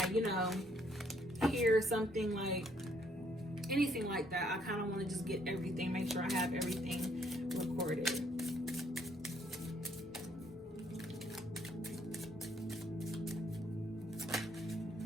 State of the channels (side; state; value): both; normal; correlation 0.68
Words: hear something like anything like that, I kind of want to just get everything, make sure I have everything recorded.